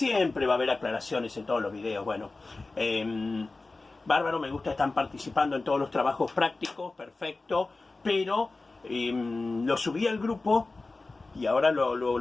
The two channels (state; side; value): quieter; right; 3.4 dB